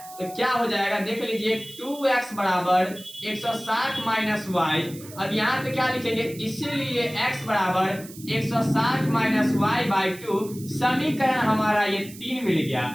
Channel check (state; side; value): noise; right; hiss, 17 dB below the sound